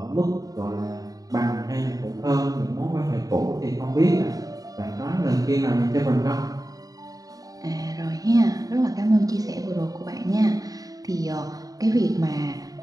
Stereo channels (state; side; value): late; left; 0.18 ms